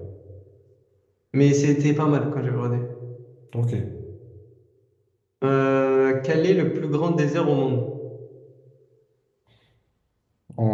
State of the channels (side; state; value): both; identical; correlation 1.00